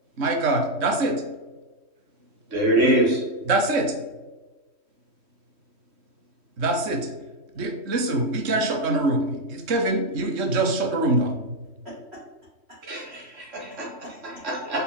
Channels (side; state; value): left; late; 3.1 ms